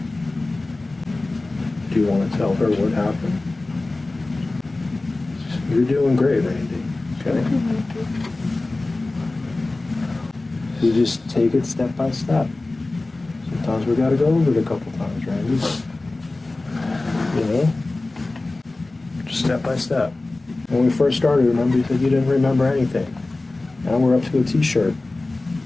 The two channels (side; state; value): right; quieter; 3.1 dB